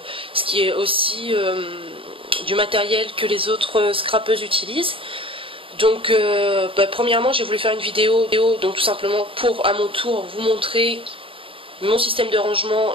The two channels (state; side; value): late; left; 0.26 ms